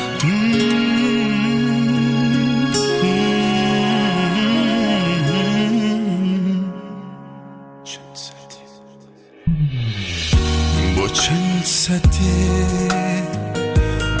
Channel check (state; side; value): identical; both; correlation 1.00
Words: با چند سطح